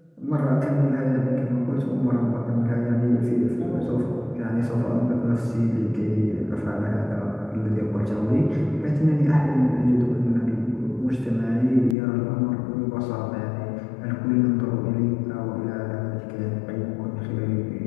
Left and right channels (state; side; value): drops out; right; at 12.0 s